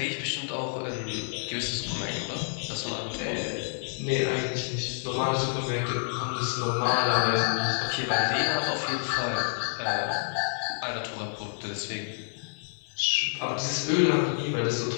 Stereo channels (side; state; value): right; silent; digital silence